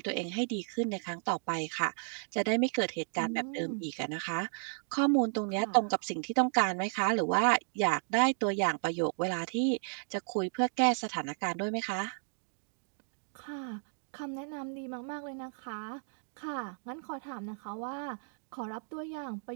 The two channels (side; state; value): left; silent; 55 dB below the other